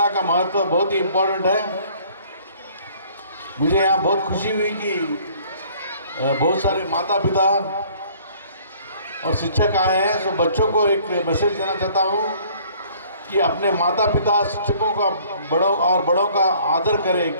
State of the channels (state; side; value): inverted; both; correlation -0.56